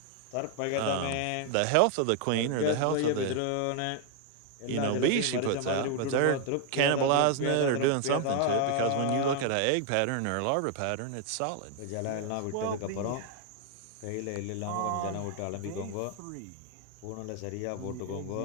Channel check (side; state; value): both; different; correlation 0.00